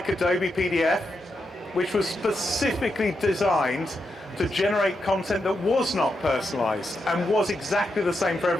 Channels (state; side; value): normal; both; correlation 0.84